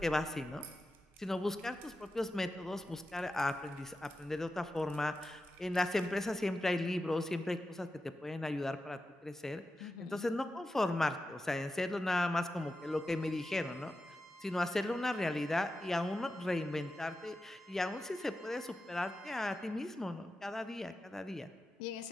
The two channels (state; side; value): normal; both; correlation 0.91